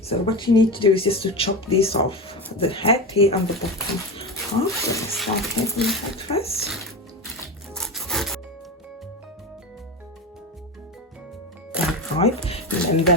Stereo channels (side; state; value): both; normal; correlation 0.22